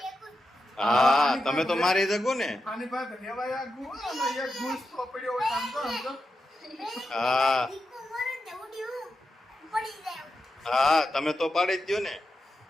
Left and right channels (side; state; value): both; normal; correlation 0.88